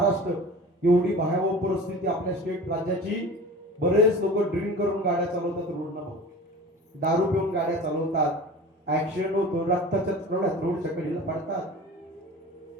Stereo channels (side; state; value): both; normal; correlation 0.37